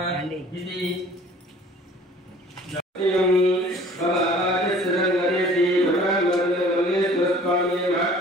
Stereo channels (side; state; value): both; normal; correlation 0.50